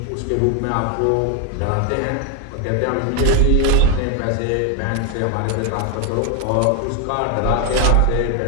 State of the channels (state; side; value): different; both; correlation 0.01